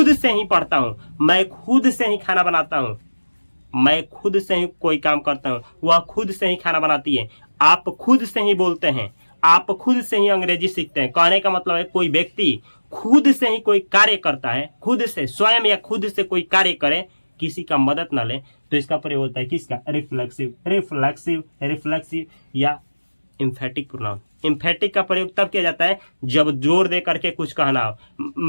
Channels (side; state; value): both; inverted; correlation -1.00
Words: से ही पढ़ता हूं, मैं खुद से ही खाना बनाता हूं, मैं खुद से ही कोई काम करता हूं, वह खुद से ही खाना बनाती है, आप खुद से ही बोलते हैं, आप खुद से ही अंग्रेजी सीखते हैं। कहने का मतलब है कोई व्यक्ति खुद से ही कोई कार्य करता है, खुद से स्वयं या खुद से कोई कार्य करे, किसी का मदद ना ले, तो इसका प्रयोग होता है किसका? रिफ्लेक्सिव, रिफ्लेक्सिव, रिफ्लेक्सिव या इम्फेटिक प्रोनाउन। इम्फेटिक का प्रयोग तब किया जाता है जब जोर दे करके कुछ कहना हो।